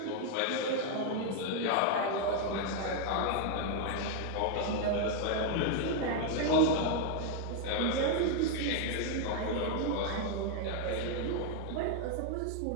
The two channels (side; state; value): both; different; correlation 0.00